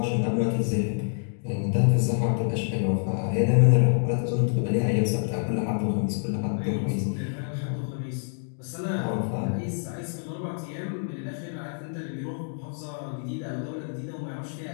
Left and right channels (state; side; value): silent; right; digital silence